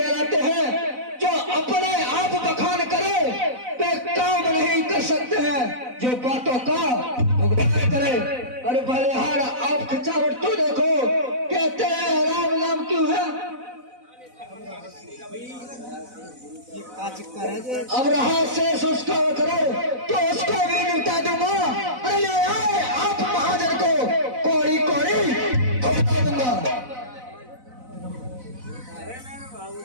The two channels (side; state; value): left; late; 4.0 ms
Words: हैं जो अपने आप बखान करे, वे काम नहीं कर सकते हैं जो बातों का भुगतान करे। अरे बलिहार आप खिंचावट तो देखो, कहते हैं राम नाम क्यों है? अब रहा शेष उसका करो तो उसको भी निपटा दूंगा। अरे ले आए आप महाजन को कोड़ी कोड़ी बता दूंगा।